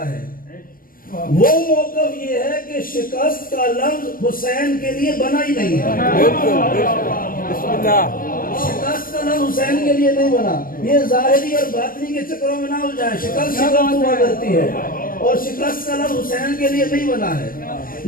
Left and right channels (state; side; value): late; right; 0.41 ms